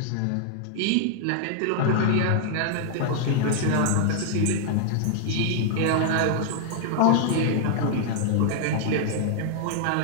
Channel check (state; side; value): different; both; correlation 0.00